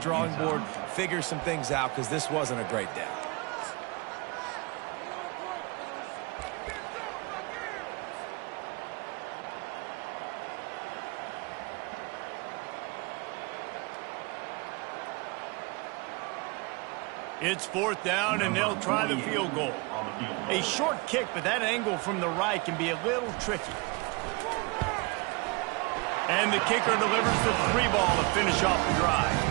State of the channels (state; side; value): quieter; left; 27.9 dB